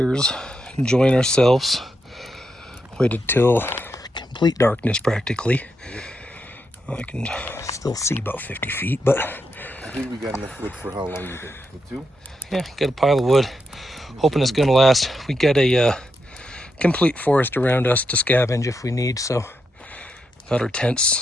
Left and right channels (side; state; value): both; normal; correlation 0.83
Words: enjoying ourselves. Waited till complete darkness practically. I can still see about 50 feet, but I think we got enough wood for how long you think? For 2? yeah, got a pile of wood. Hoping it's gonna last. We got a complete forest around us to scavenge if we need, so got our tents